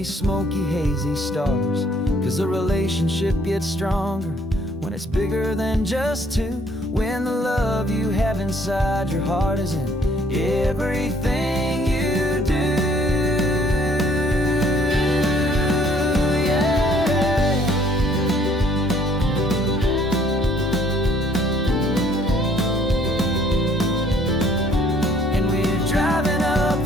smoky, hazy stars. 'Cause a relationship gets stronger when it's bigger than just two. When the love you have inside your heart is in everything you do.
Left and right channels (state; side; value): normal; both; correlation 0.61